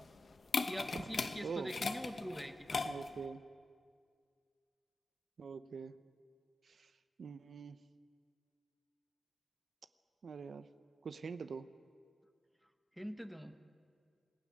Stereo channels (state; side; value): normal; both; correlation 0.90